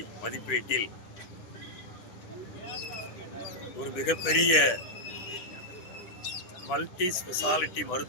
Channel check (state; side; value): late; right; 9.9 ms